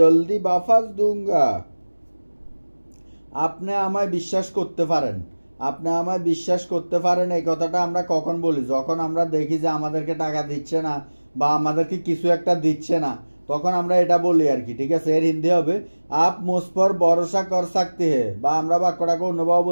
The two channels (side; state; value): both; inverted; correlation -1.00